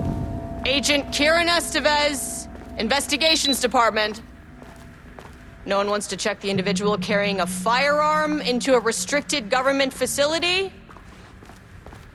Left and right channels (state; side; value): identical; both; correlation 1.00